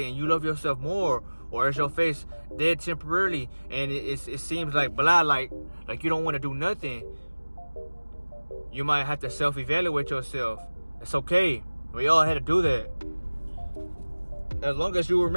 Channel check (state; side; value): inverted; both; correlation -1.00